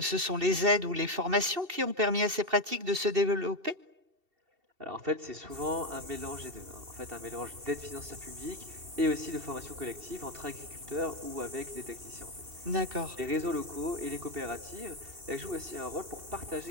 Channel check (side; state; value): left; late; 2.7 ms